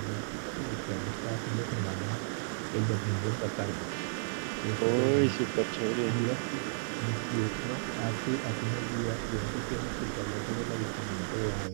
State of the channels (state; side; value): silent; left; digital silence